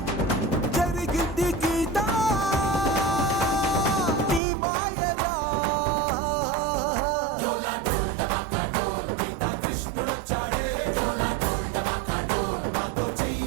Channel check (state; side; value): drops out; left; at 4.4 s